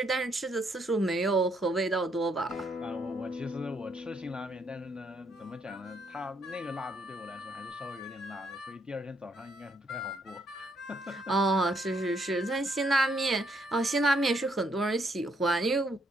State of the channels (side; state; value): both; normal; correlation 0.73